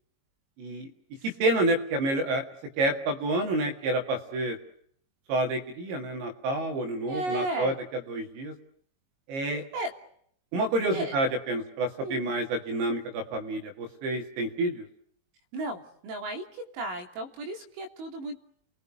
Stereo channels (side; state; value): left; late; 22 ms